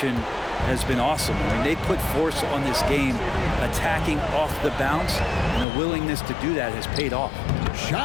has been awesome. I mean, they put force on this game, attacking off the bounce, and the willingness to do that has paid off.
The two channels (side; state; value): right; drops out; at 5.7 s